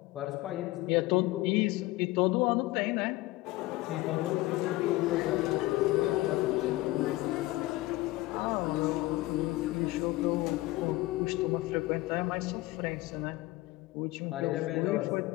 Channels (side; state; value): right; quieter; 19.0 dB